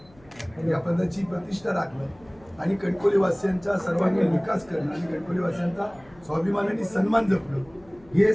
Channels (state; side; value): noise; left; hum, 27 dB below the sound